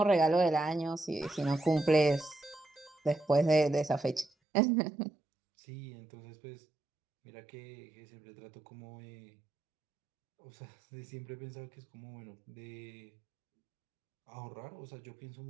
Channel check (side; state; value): left; drops out; at 4.3 s